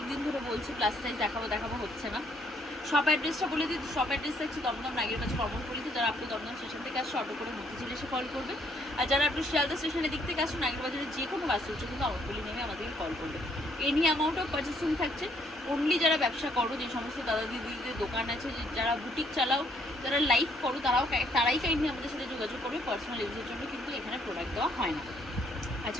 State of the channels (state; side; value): normal; both; correlation 0.68